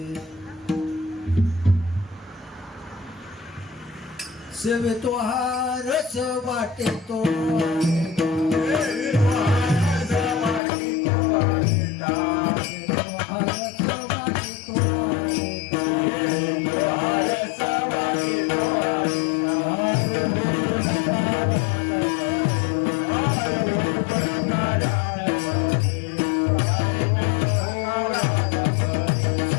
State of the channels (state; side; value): drops out; right; at 10.6 s